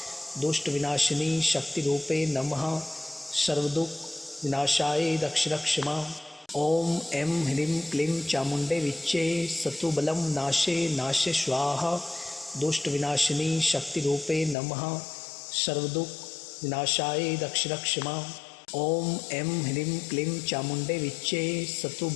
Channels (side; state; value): right; drops out; at 14.6 s